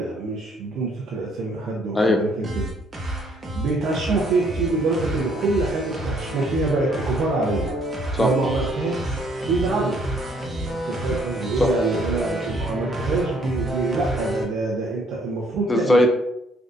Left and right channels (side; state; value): both; normal; correlation 0.65